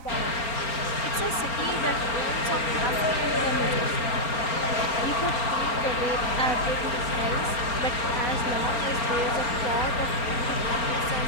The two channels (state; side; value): late; right; 4.4 ms